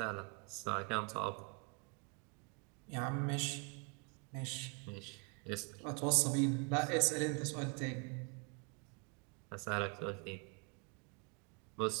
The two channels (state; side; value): quieter; left; 33.5 dB